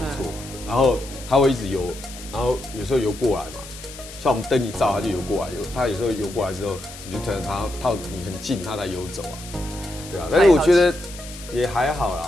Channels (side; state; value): left; noise; hiss, 15 dB below the sound